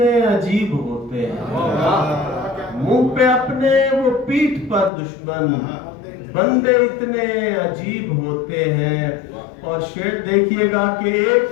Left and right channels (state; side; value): drops out; right; at 4.9 s